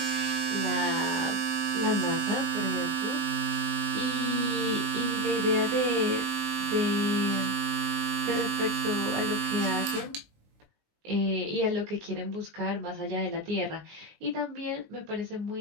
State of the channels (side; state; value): left; late; 19 ms